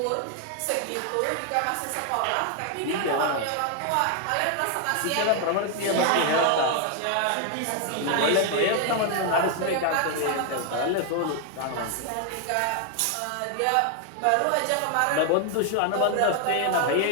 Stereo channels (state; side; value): different; both; correlation 0.00